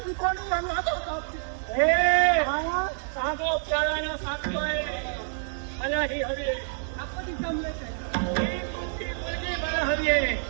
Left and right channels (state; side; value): silent; left; digital silence